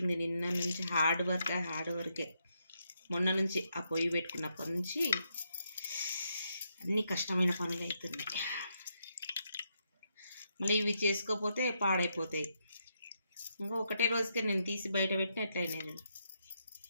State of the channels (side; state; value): both; inverted; correlation -0.79